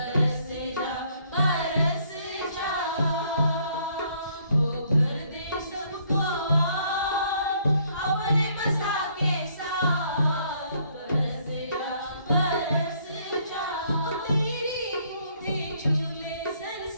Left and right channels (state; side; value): inverted; both; correlation -0.66